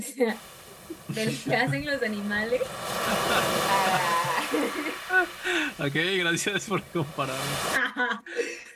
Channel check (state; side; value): identical; both; correlation 1.00